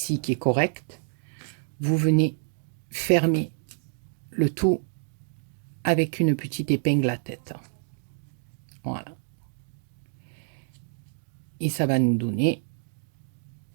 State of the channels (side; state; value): left; silent; digital silence